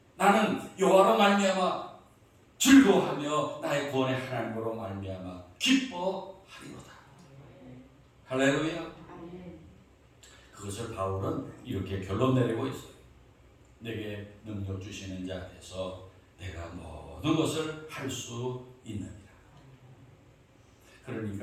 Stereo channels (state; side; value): identical; both; correlation 1.00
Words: 나는 여호와로 말미암아 즐거워하며 나의 구원의 하나님으로 말미암아 기뻐하리로다. 할렐루야. 그것을 바울은 이렇게 결론 내리고 있어요. 내게 능력 주시는 자에서 내가 모든 것을 할 수 있느니라.